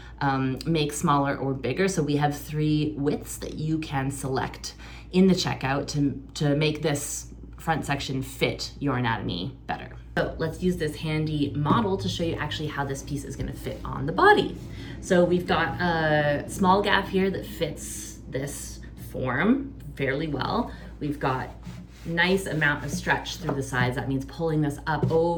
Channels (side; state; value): both; identical; correlation 1.00